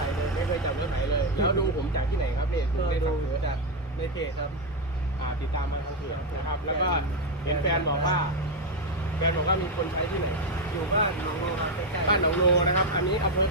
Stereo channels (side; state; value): both; normal; correlation 0.06